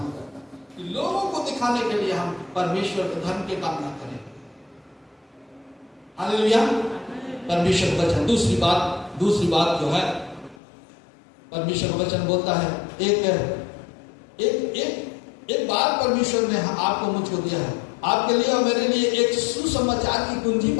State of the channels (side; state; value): right; drops out; at 10.6 s